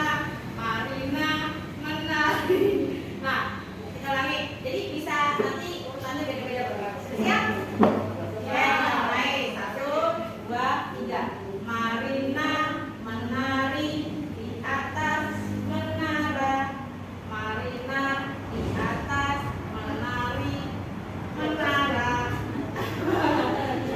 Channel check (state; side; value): identical; both; correlation 1.00